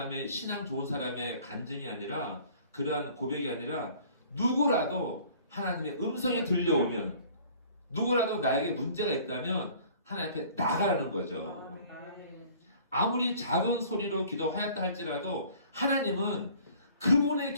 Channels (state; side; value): inverted; both; correlation -0.52